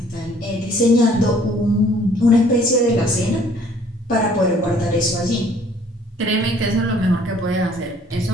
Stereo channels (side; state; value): both; normal; correlation 0.58